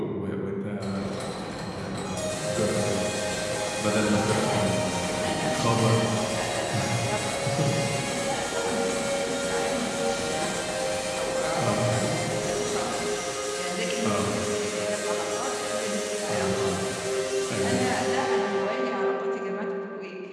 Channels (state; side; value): identical; both; correlation 1.00